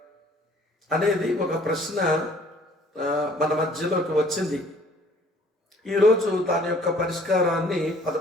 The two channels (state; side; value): normal; both; correlation 0.56